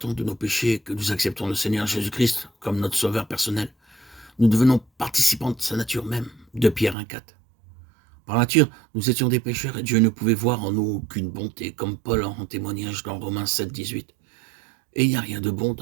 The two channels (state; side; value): drops out; left; at 7.0 s